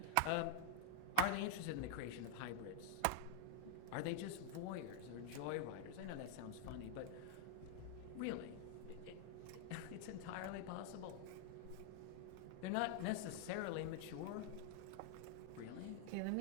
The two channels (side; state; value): both; different; correlation 0.00